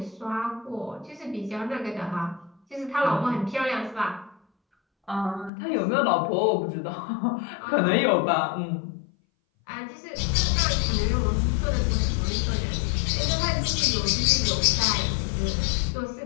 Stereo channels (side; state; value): right; drops out; at 5.5 s